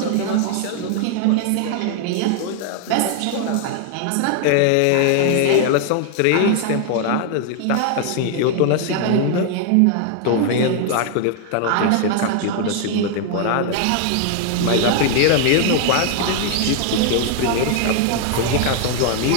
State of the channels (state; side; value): different; both; correlation 0.00